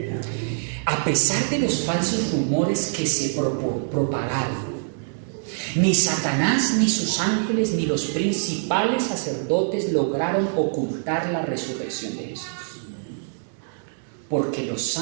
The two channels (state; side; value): silent; left; 62 dB below the other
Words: A pesar de los falsos rumores que se propagaron, ni Satanás, ni sus ángeles, ni los principales sacerdotes lograron ocultar la resurrección de Jesús, porque los